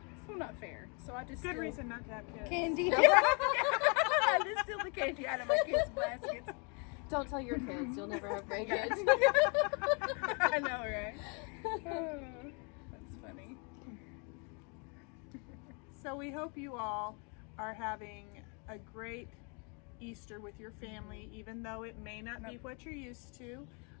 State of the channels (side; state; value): right; quieter; 35.2 dB